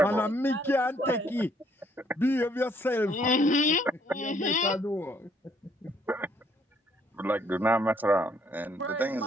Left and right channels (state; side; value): normal; both; correlation 0.66